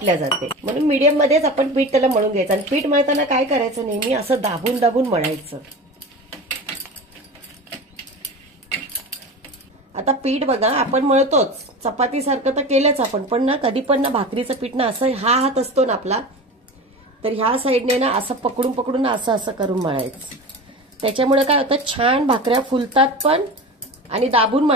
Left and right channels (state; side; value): normal; both; correlation 0.31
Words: जाते. म्हणून मीडियम मध्येच आपण पीठ त्याला मळून घ्यायचं. आणि पीठ मळताना काय करायचं, नेहमी असं दाबून दाबून मळायचं. आता पीठ बघा आपण मळतोच, चपातीसारखं तर केलंच आपण, पण ना कधी पण ना भाकरीचं पीठ ना असं हा हात असतो ना आपला, तर ह्या साईडने ना असं पकडून पकडून असं असं करून मळायचं. त्याच्यामुळे काय होतं, छान भाकऱ्या फुलतात पण, आणि दाबून